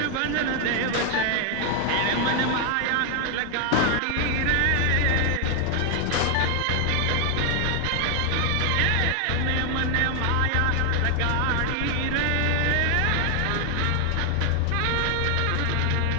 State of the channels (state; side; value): different; both; correlation 0.01